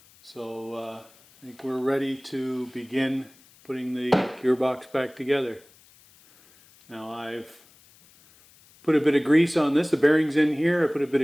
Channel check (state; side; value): noise; left; hiss, 28 dB below the sound